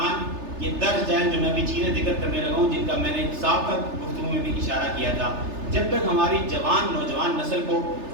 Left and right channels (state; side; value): late; left; 3.3 ms